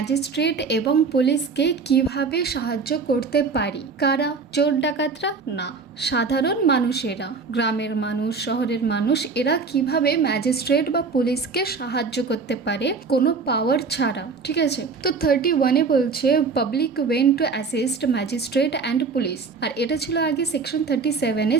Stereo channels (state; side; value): quieter; left; 4.8 dB